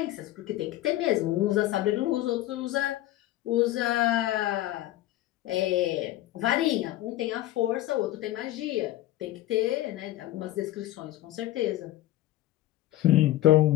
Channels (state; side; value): quieter; right; 14.9 dB